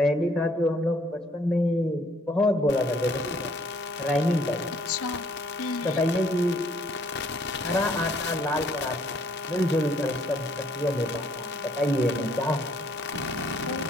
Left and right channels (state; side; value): normal; both; correlation 0.64